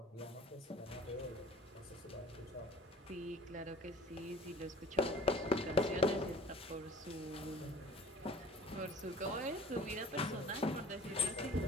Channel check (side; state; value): both; normal; correlation 0.46